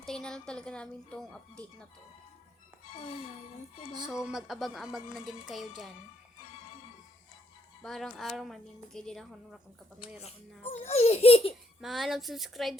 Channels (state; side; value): normal; both; correlation 0.71